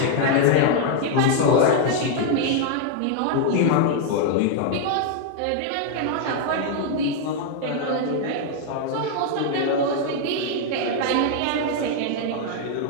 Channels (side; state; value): both; different; correlation 0.00